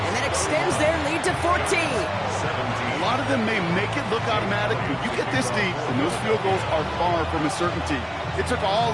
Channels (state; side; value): identical; both; correlation 1.00